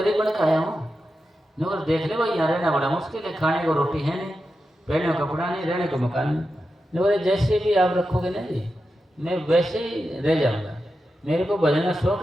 बन के आया हूँ। नौकर देख ले भाई, यहाँ रहना बड़ा मुश्किल है, खाने को रोटी है नहीं, पहनने को कपड़ा नहीं, रहने को मकान नहीं। नौकर जैसे भी आप रखोगे ना जी, मैं वैसे ही रह जाऊँगा। मेरे को भजन का शौक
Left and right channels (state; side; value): normal; both; correlation 0.89